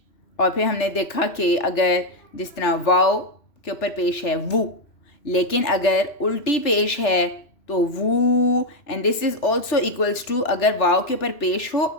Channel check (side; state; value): right; late; 3.4 ms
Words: اور پھر ہم نے دیکھا کہ اگر جس طرح واؤ کے اوپر پیش ہے وو, لیکن اگر الٹی پیش ہے تو وو. And this is also equals to اگر واؤ کے اوپر پیش ہو